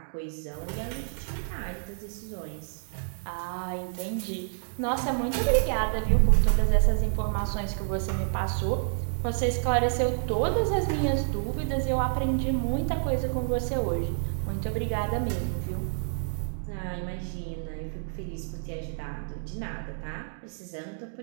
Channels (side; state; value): left; silent; digital silence